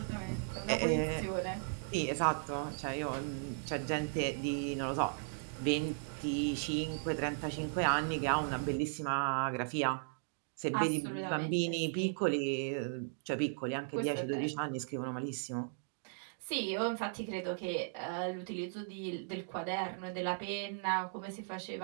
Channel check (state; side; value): silent; left; digital silence